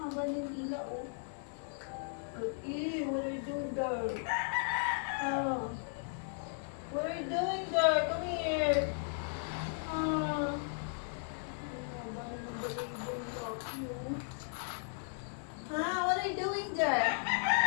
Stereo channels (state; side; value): silent; right; digital silence